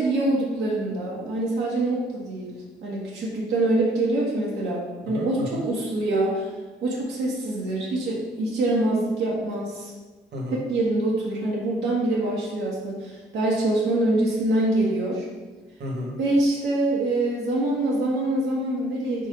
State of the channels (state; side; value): normal; both; correlation 0.62